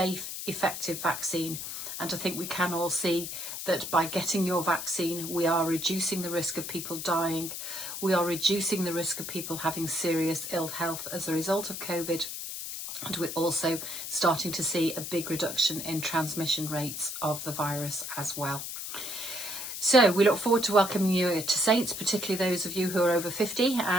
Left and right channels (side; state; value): left; noise; hiss, 6 dB below the sound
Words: effective vaccine, and I think we can all see that by getting your vaccine we are reducing the risk of people dying, we are reducing the risk of people having serious ill health as a result of COVID, and we're also starting to see a big reduction in transmission rates of the virus as well. So we look forward to welcoming you to Saints, particularly those of you who are over 50